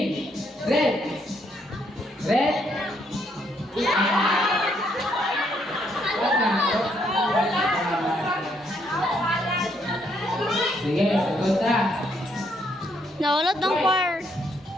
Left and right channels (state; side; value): normal; both; correlation 0.72